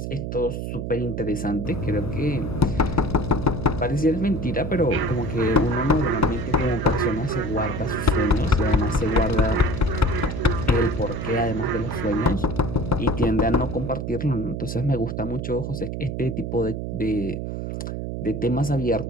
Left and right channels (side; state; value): right; noise; hum, 5 dB below the sound